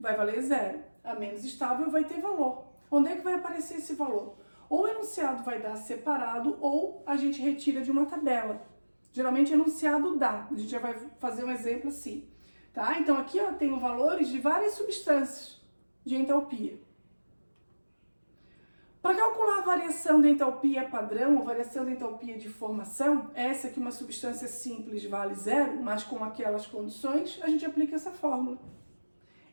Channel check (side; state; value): both; inverted; correlation -1.00